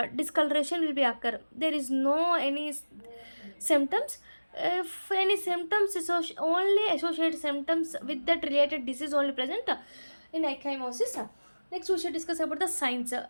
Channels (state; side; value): inverted; both; correlation -1.00